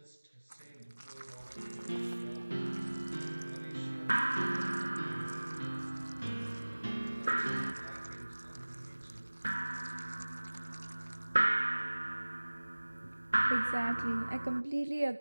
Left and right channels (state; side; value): inverted; both; correlation -1.00